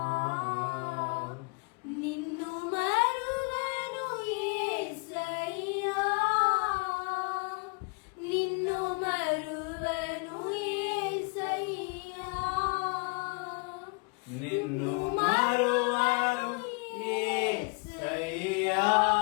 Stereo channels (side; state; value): right; quieter; 32.1 dB